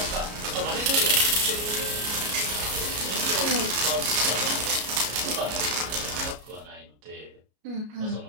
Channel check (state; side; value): late; left; 33 ms